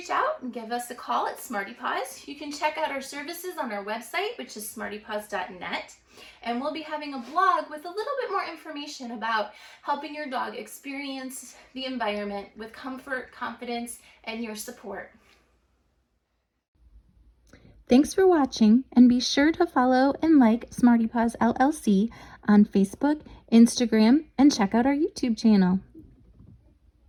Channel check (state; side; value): identical; both; correlation 1.00